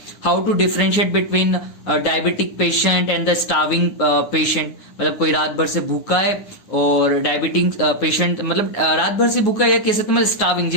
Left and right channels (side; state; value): right; late; 9.5 ms